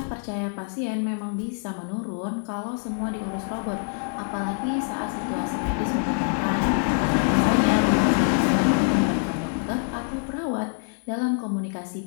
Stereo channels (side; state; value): right; silent; 62 dB below the other